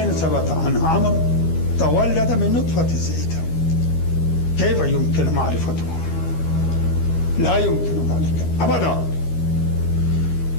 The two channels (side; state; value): right; late; 13 ms